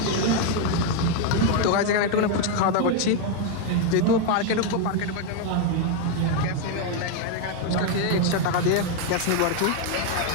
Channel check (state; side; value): different; both; correlation 0.01